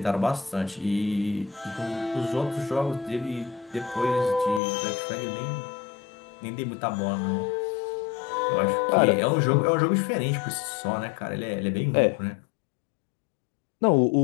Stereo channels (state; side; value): drops out; right; at 4.6 s